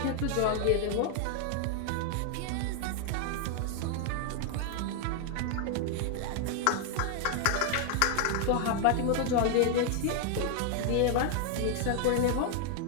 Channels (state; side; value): different; both; correlation 0.00